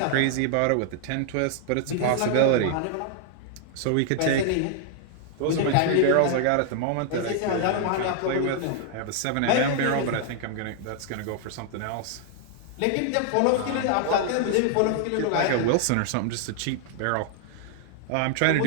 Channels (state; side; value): different; both; correlation 0.00